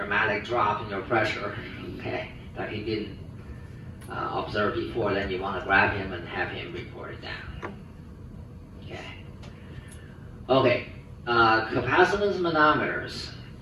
drop in your pressure, okay, that he didn't observe before, then you want to grab him and have him report it down. Okay. Okay, capacitance manometers.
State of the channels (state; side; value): identical; both; correlation 1.00